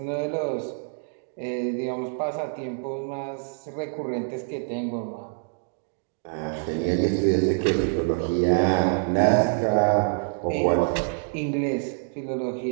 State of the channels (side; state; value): left; silent; digital silence